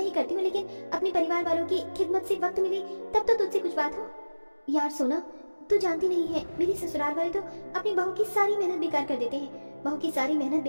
ही करती हूँ, लेकिन अपने परिवार वालों की खिदमत से वक्त मिले तब तो तुझसे कुछ बात हो। यार सोना, तू जानती नहीं है, मेरे ससुराल वाले तो अपनी बहू की सारी मेहनत बेकार कर देते हैं। बहू की सारी मेहनत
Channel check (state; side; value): inverted; both; correlation -1.00